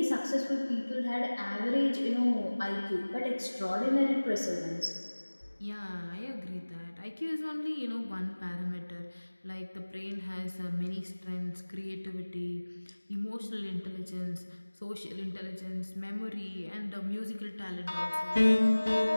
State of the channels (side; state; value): both; inverted; correlation -1.00